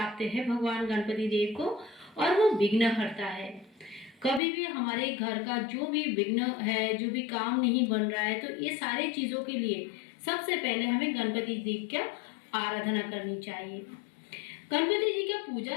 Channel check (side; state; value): right; drops out; at 4.4 s